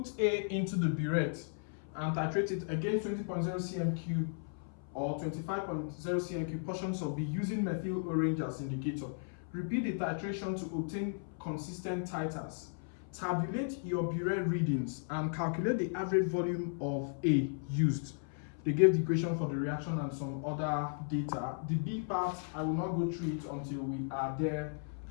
A into the burette and titrate it against 20.0 cm cube or 25.0 cm cube portions of B using methyl orange as indicator. Repeat the titration to obtain consistent titers. Tabulate your burette readings and calculate the average volume of A used. They gave the equation for the reaction and some other data. The B part, I will not go through it until we are there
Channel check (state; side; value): silent; right; 54 dB below the other